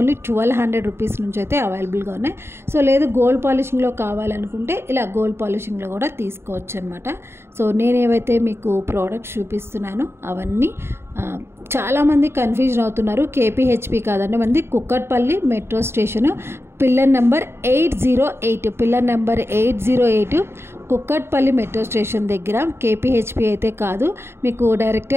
1200 rupees నుంచి అయితే అవైలబుల్గా ఉన్నాయి. సో లేదు గోల్డ్ పాలిషింగ్లో కావాలనుకుంటే ఇలా గోల్డ్ పాలిషింగ్లో కూడా తీసుకోవచ్చు అనమాట. సో నేను ఏవైతే మీకు ప్రోడక్ట్స్ చూపిస్తున్నానో అవన్నీ చాలామంది కన్ఫ్యూజన్ అవుతున్నారు. కేపీహెచ్పి కాదండి, మనది Kukatpally metro station, pillar number 808, pillar number 808 Kukatpally metro station దగ్గర. కేపీహెచ్పి అయితే కాదు. మీకు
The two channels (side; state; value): left; late; 0.12 ms